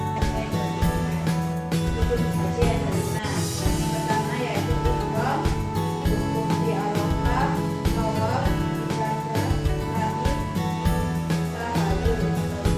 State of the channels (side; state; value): both; identical; correlation 1.00